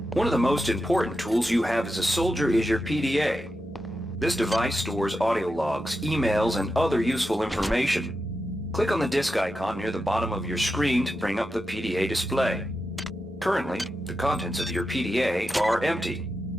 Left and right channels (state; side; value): normal; both; correlation 0.88